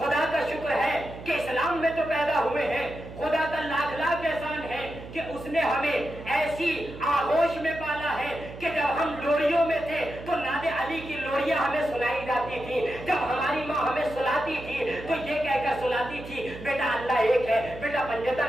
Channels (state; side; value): noise; right; hum, 13 dB below the sound